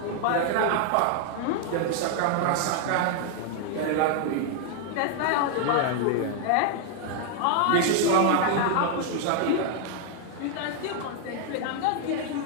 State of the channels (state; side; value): different; both; correlation 0.00